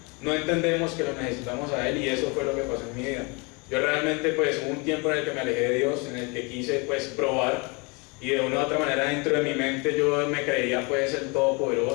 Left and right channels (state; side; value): quieter; right; 29.4 dB